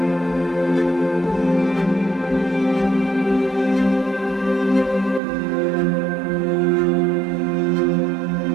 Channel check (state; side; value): drops out; left; at 5.2 s